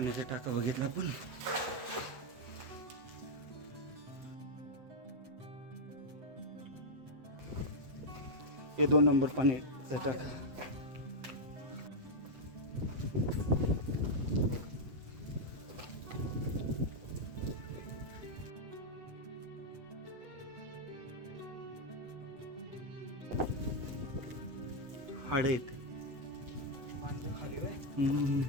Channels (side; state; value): left; late; 7.9 ms